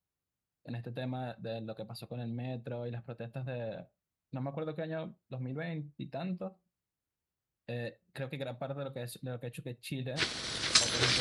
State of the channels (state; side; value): identical; both; correlation 1.00